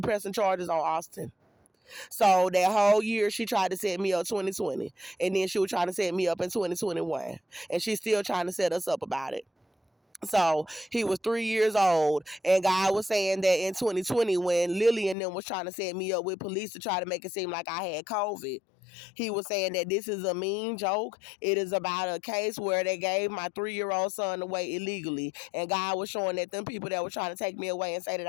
pressing charges on Austin." So that whole year, she tried to set me up 2020. And then she was trying to set me up in 2021. And she's still trying to set us up about it. So he was 3 years old. And God was saying that in 2020, when Lily and them was trying to set me up with police to try to make it seem like I had COVID, he was saying that this is a mean joke. It is about a case where they gave my 3-year-old son away illegally. And God was showing that them people that were trying to take me away and say that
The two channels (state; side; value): drops out; right; at 15.2 s